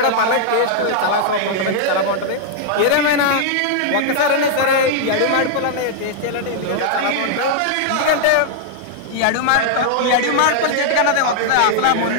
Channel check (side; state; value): both; different; correlation -0.01